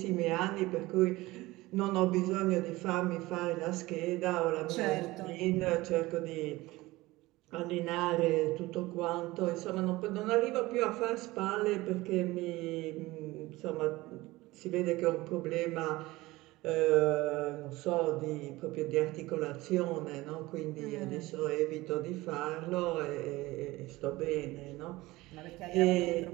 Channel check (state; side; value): quieter; left; 19.7 dB